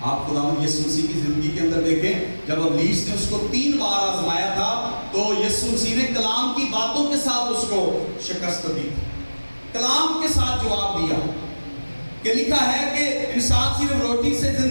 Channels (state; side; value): inverted; both; correlation -1.00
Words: آپ خداوند یسوع مسیح کی زندگی کے اندر دیکھیں، جب ابلیس نے اس کو 3 بار آزمایا تھا تو یسوع مسیح نے کلام کی باتوں کے ساتھ اس کو شکست دی، کلام کے ساتھ جواب دیا کہ لکھا ہے کہ انسان صرف روٹی سے